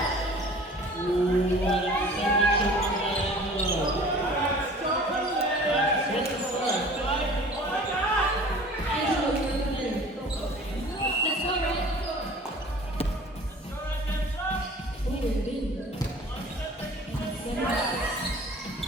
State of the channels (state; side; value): normal; both; correlation 0.45